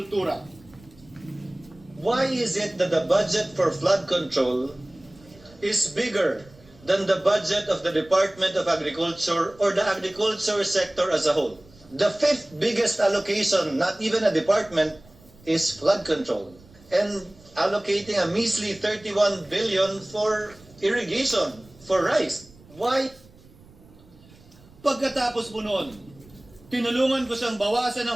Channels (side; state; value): right; noise; rumble, 25 dB below the sound